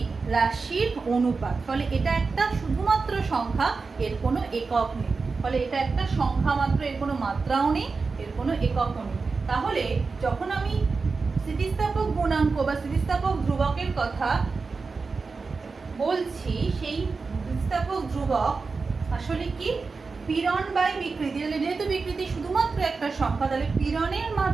রাশির অনুপাত। ফলে এটা একটা শুধুমাত্র সংখ্যা, এর কোনো একক নেই। ফলে এটা একটা সংখ্যা মাত্র, এর কোনো মাত্রাও নেই, এর কোনো এককও নেই। তাহলে যখন আমি স্থিতিস্থাপক গুণাঙ্ক বা স্থিতিস্থাপক ধ্রুবকের কথা বলছি, সেই স্থিতিস্থাপক ধ্রুবক আসলে কি পীড়ন বাই বিকৃতি। তাহলে যেহেতু বিকৃতি শুধুমাত্র একটা সংখ্যা, তাহলে পীড়নের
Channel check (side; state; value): left; quieter; 4.4 dB